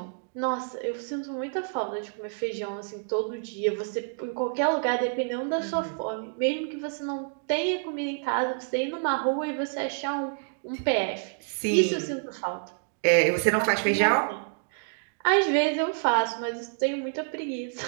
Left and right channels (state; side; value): silent; left; digital silence